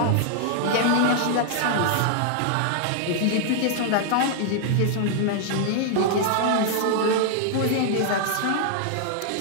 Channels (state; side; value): different; both; correlation 0.00